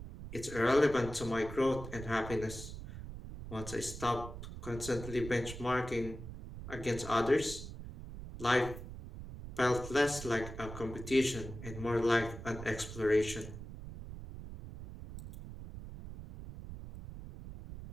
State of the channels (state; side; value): noise; right; rumble, 11 dB below the sound